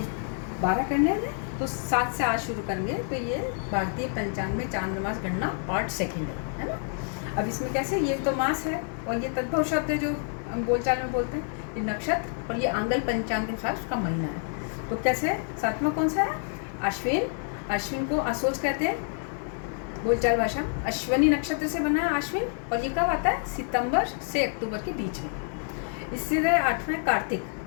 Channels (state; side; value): silent; right; 57 dB below the other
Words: 12 करने हैं तो 7 से आज शुरू करेंगे। तो ये भारतीय पंचांग में चांद्रमास गणना पार्ट 2 है ना। अब इसमें कैसे, ये तो मास है और ये तद्भव शब्द है जो हम बोलचाल में बोलते हैं, ये नक्षत्र और ये आंगल पंचांग के अनुसार उसका महीना है। तो कैसे, 7वां कौन सा है? अश्विन। अश्विन को असोज कहते हैं बोलचाल भाषा। अश्वनी नक्षत्र से बना है अश्विन और ये कब आता है? सितंबर से अक्टूबर के बीच में। इससे 8वां कार्तिक।